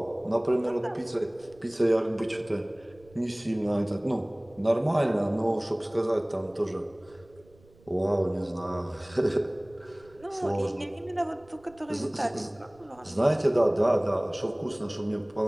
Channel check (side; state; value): right; noise; rumble, 28 dB below the sound